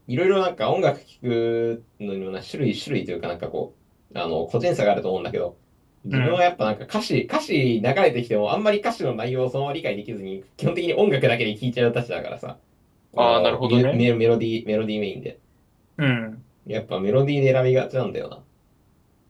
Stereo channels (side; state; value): both; identical; correlation 1.00